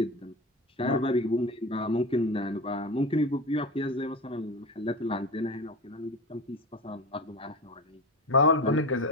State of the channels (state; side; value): normal; both; correlation 0.26